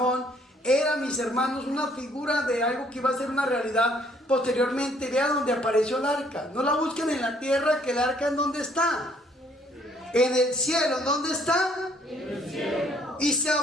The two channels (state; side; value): normal; both; correlation 0.64